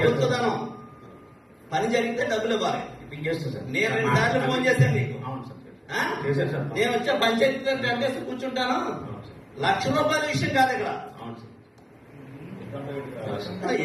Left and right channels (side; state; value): both; identical; correlation 1.00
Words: పని జరిగితే డబ్బులు ఇవ్వాలి. నేను 2 సార్లు ఫోన్ చేశాను నీకు. నేను వచ్చే పంచాయతీ కట్టేసి కూర్చుంటాను. ₹1,00,000 విషయం కాదు ఇక్కడ.